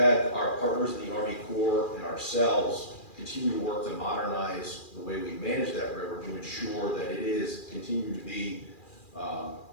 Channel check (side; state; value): right; late; 2.4 ms